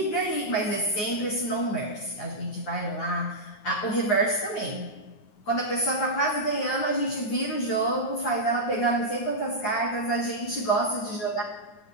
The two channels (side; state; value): right; late; 9.6 ms